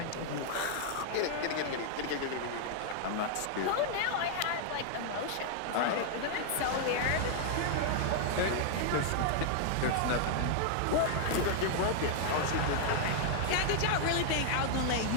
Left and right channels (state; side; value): different; both; correlation -0.01